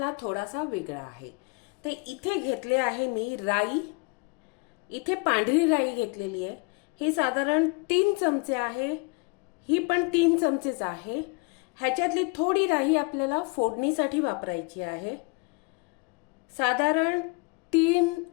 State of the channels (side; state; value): right; quieter; 30.9 dB